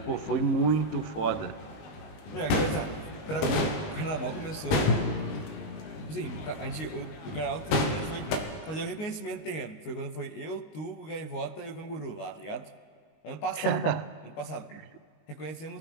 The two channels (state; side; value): late; right; 20 ms